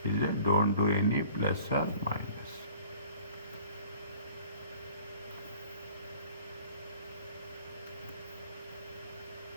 Is it? Don't do any plus or minus.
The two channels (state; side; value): inverted; both; correlation -0.50